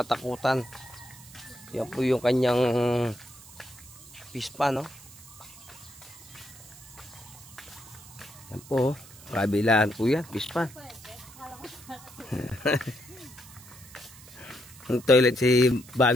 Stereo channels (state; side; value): noise; right; hiss, 20 dB below the sound